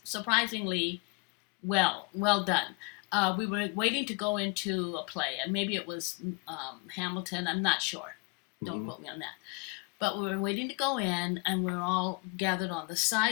surprisingly well done. We were waiting to go into a play, and maybe it was Hamilton. I'm not sure. Don't quote me on that. But we were waiting to go in, and we were all gathered on the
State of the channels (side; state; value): right; quieter; 32.1 dB